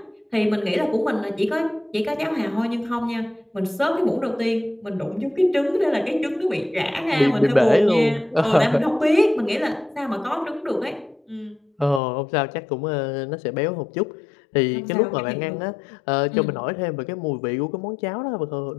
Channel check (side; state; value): right; drops out; at 12.0 s